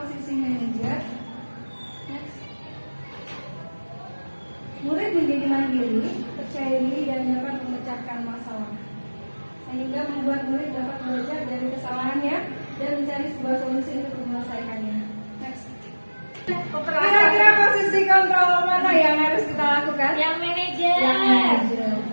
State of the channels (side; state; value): both; inverted; correlation -1.00